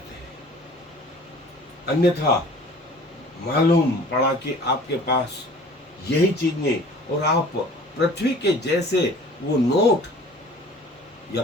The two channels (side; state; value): both; normal; correlation 0.47